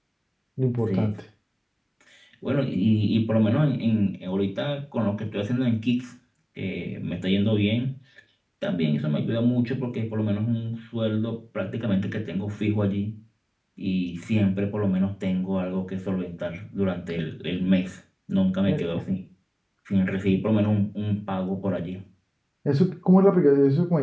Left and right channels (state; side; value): identical; both; correlation 1.00